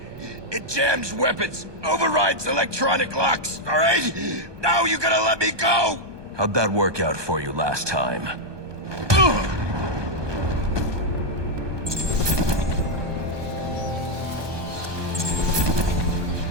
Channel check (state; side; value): late; left; 1.2 ms